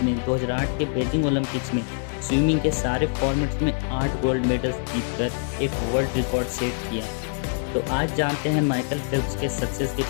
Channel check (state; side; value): silent; right; 62 dB below the other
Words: ने 2008 के बीजिंग ओलंपिक्स में स्विमिंग के सारे फॉर्मेट्स में 8 गोल्ड मेडल्स जीतकर एक वर्ल्ड रिकॉर्ड सेट किया। तो आज जानते हैं माइकल फेल्प्स के सक्सेस के